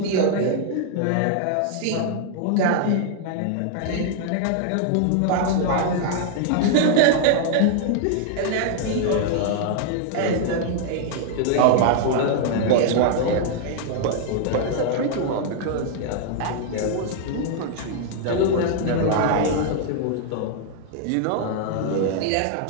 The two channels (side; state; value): both; different; correlation -0.01